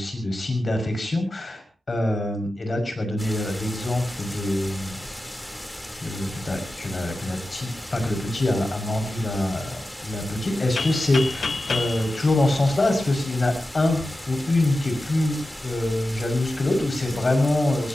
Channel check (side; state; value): both; normal; correlation 0.93